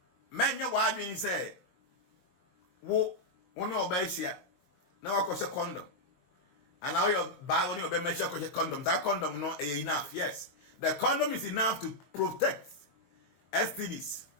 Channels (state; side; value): late; right; 22 ms